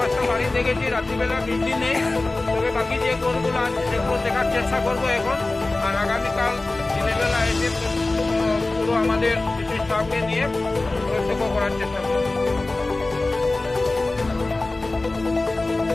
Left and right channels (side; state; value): right; quieter; 3.1 dB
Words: বাড়ি দেখেছি, রাত্রিবেলা বৃষ্টি নেই, তবে বাকি যে ঘরগুলো আছে সেগুলো দেখার চেষ্টা করবো এখন। আর আগামীকাল দিনের বেলা এসে পুরো আমাদের কিছু স্টাফকে নিয়ে প্রত্যক্ষ করার চেষ্টা করবো।